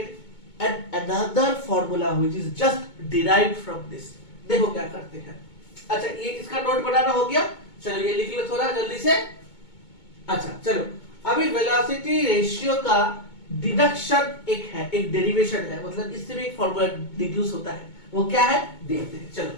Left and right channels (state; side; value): late; right; 2.2 ms